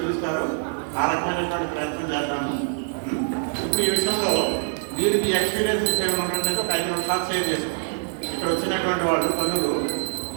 ఆ రకమైనటువంటి ప్రయత్నం చేద్దాము. ఇప్పుడు ఈ విషయంలో మీరు మీ ఎక్స్పీరియన్సెస్ ఏమైనా ఉన్నట్లయితే ఒక 5 నిమిషాలు షేర్ చేస్తాం. ఇక్కడ వచ్చినటువంటి వాళ్ళు పనులు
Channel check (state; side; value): silent; left; 62 dB below the other